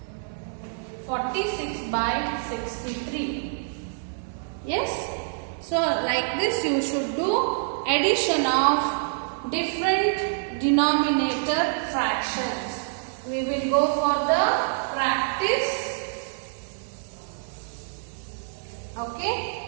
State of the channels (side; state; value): left; silent; 61 dB below the other